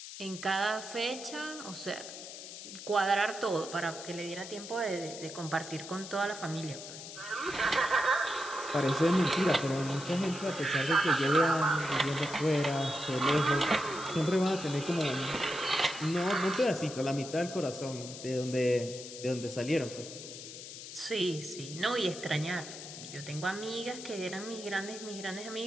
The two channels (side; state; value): left; noise; hiss, 11 dB below the sound